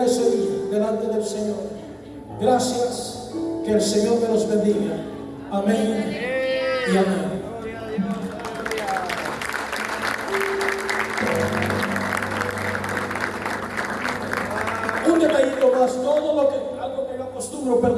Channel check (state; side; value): identical; both; correlation 1.00